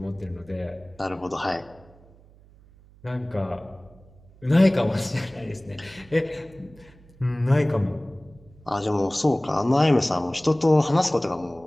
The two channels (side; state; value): right; noise; hum, 26 dB below the sound